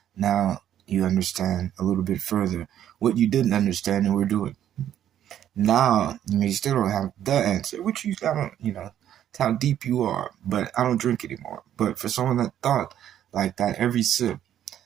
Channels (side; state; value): left; quieter; 10.7 dB